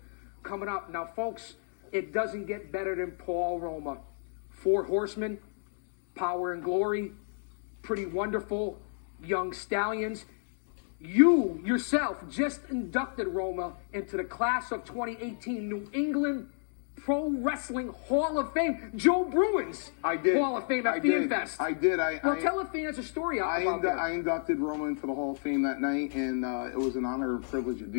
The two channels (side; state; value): right; silent; digital silence